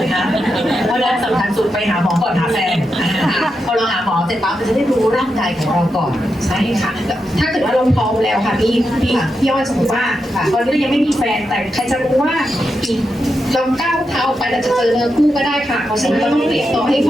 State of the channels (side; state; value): both; normal; correlation 0.86